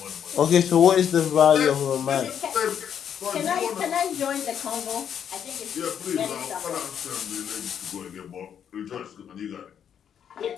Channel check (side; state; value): right; quieter; 8.6 dB